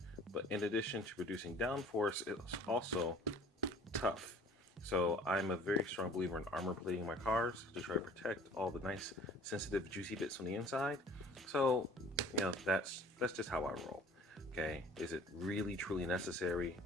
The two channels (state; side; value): normal; both; correlation 0.49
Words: But in addition to producing downforce, it's also tough. So I'm a very strong believer in armor plating my cars to try to protect all the nice, sensitive, juicy bits on the inside. So, you know, that's just how I roll. Okay, is it really truly necessary?